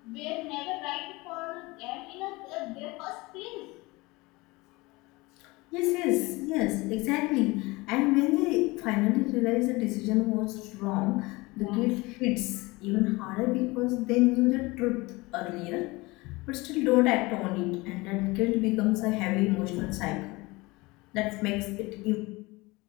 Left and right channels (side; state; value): right; quieter; 23.0 dB